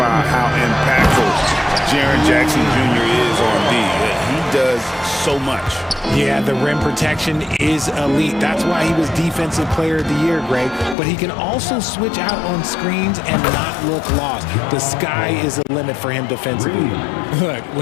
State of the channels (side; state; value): right; drops out; at 11.0 s